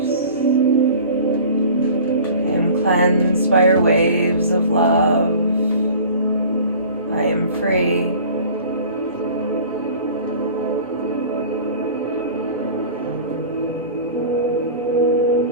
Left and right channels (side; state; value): both; inverted; correlation -0.43